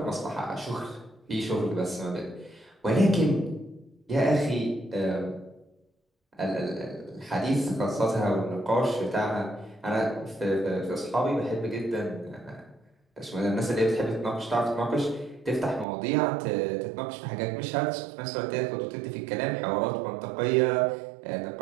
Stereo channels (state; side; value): drops out; left; at 15.9 s